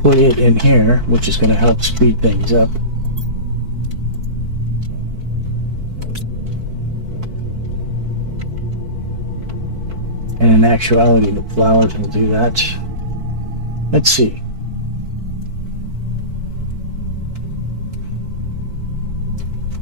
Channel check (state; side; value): late; left; 4.5 ms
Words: put it in here, which is going to help speed things up. And in actuality, the flowers will do that. Let's see.